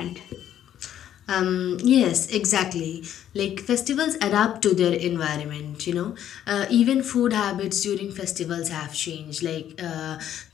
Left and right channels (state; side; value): quieter; right; 10.8 dB